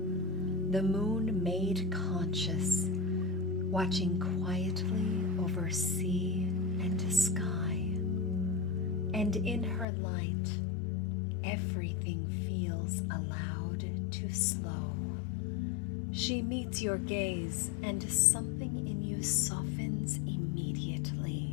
the moon made conscious, watching quietly over sea and sky. And in her light, everything feels allowed to slow. She meets your gaze, and something in you softens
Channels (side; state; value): right; drops out; at 9.9 s